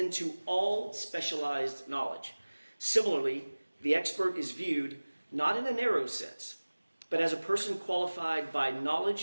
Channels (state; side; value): inverted; both; correlation -1.00